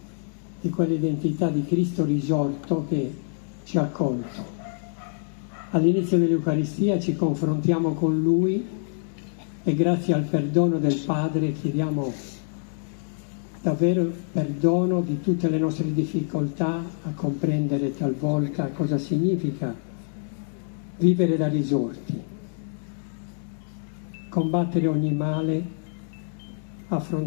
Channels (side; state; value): right; silent; digital silence